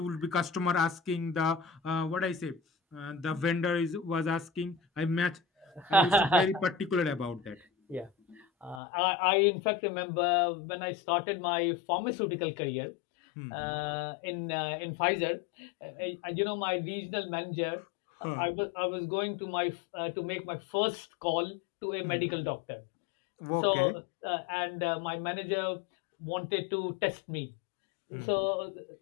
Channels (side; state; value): right; drops out; at 8.8 s